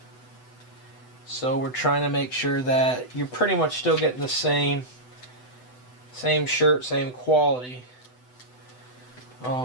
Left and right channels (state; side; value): late; right; 8.0 ms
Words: so we're trying to make sure that you're pretty much still getting the same shirt, same quality.